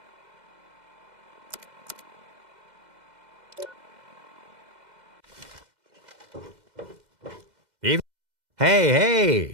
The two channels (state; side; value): late; left; 2.0 ms